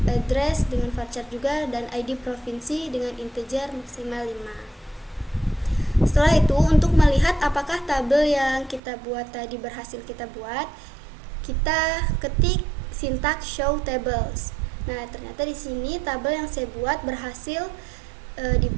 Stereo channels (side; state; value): left; drops out; at 8.8 s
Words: address dengan varchar juga, dan ID provinsi dengan integer maksimal 5. Setelah itu, untuk melihat apakah tabel yang kita buat tadi berhasil kita buat, kita ketik sintaks show tables. Nah, ternyata di sini tabel yang saya buat berhasil